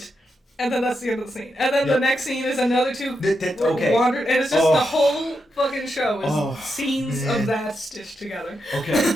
and then that's the end of the scene. And then the next scene is another two wandered, and it's just the whole fucking show is scenes of that stitched together.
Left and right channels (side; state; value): both; normal; correlation 0.85